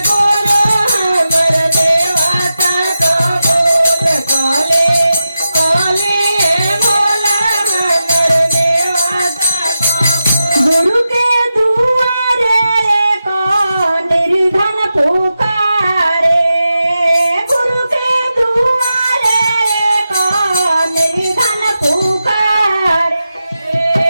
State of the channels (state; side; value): inverted; both; correlation -0.90